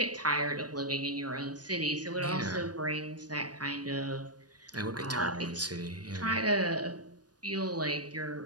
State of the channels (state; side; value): late; left; 0.69 ms